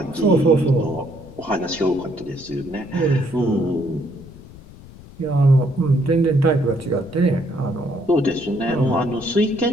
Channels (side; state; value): left; noise; rumble, 19 dB below the sound